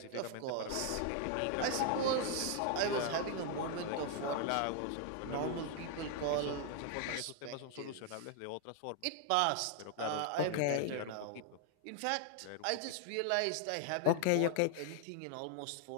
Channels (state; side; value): different; both; correlation 0.00